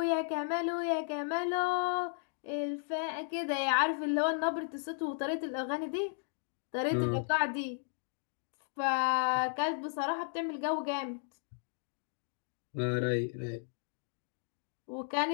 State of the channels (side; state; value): right; silent; digital silence